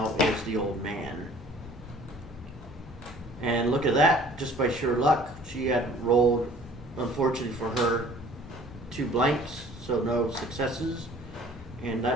is the old man. And look at that, just by sheer luck, she had rolled, unfortunately for her, 2 blanks, so no successes. And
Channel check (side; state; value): both; normal; correlation 0.52